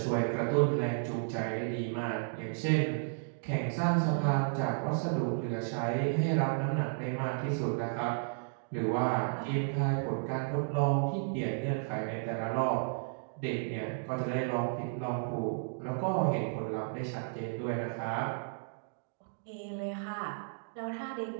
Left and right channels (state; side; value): silent; left; digital silence